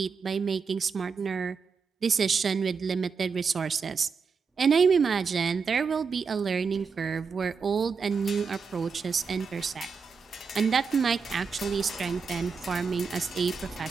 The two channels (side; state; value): left; quieter; 5.4 dB